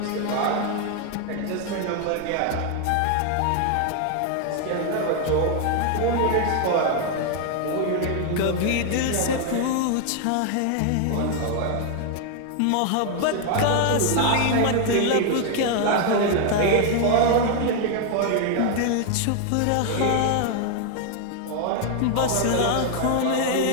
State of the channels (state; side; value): different; both; correlation 0.00